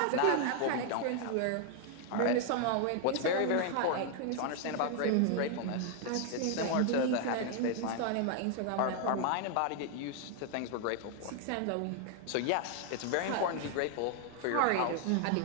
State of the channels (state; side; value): different; both; correlation 0.00